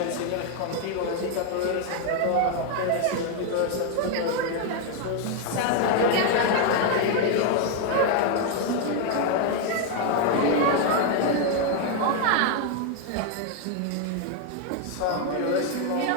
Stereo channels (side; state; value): both; different; correlation 0.01